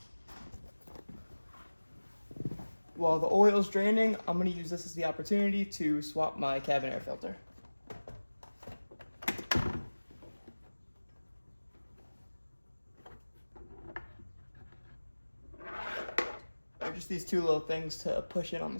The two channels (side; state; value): both; inverted; correlation -1.00